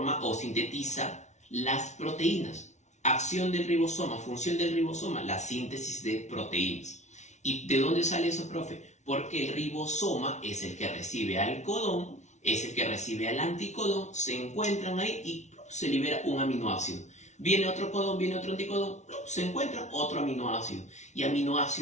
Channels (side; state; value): right; late; 0.33 ms